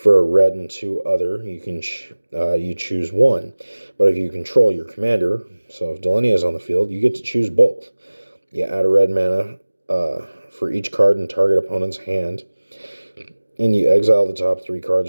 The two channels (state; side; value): inverted; both; correlation -1.00